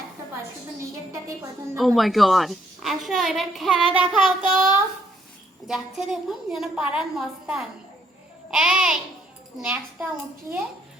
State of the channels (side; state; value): both; normal; correlation 0.70